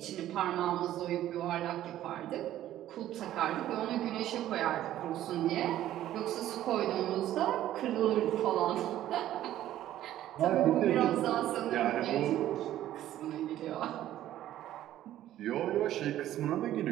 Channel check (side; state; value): left; quieter; 13.0 dB